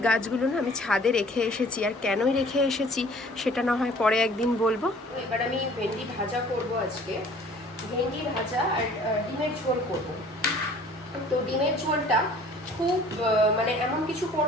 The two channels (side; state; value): both; normal; correlation 0.52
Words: গাছগুলো না আমি ছাদে রেখে এসেছি। আর কেনই রেখে এসেছি সেটা না হয় পরে একদিন বলবো। এবার আমি ভেন্ডি ভাজা করব আজকে, ভেন্ডি ভাজা আর ডিমের ঝোল করব। তো ডিমের ঝোলটা খুব মানে এমন কিছু